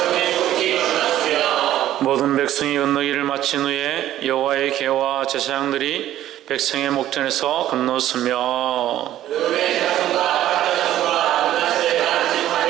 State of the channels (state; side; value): quieter; left; 12.8 dB